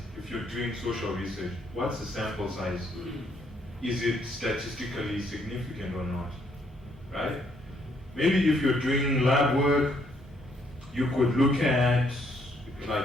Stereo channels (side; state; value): both; normal; correlation 0.70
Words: If you're doing social research, what's the sample size? Is it statistically significant or not? Right? Maybe if you're doing lab work, you could look at, like